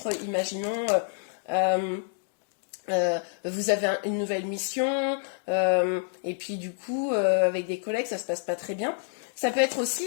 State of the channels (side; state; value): right; silent; 59 dB below the other